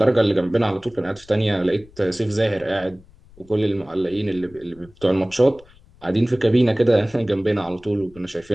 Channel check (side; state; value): left; noise; rumble, 25 dB below the sound